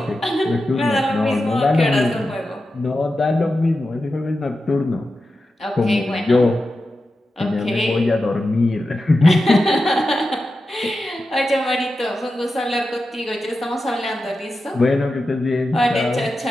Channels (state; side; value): normal; both; correlation 0.91